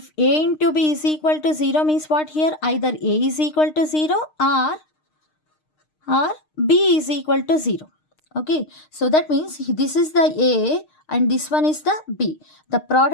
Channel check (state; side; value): late; right; 6.5 ms